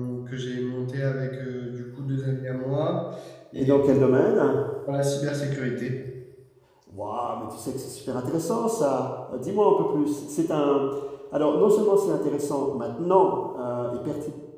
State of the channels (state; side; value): identical; both; correlation 1.00